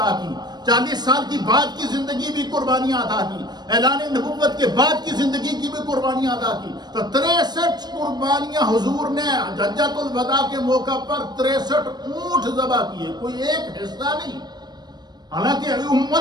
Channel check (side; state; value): left; late; 0.20 ms